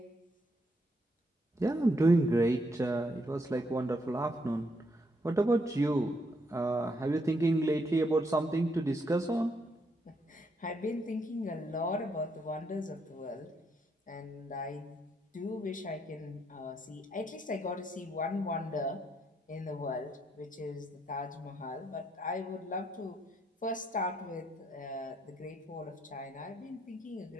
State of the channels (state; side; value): normal; both; correlation 0.75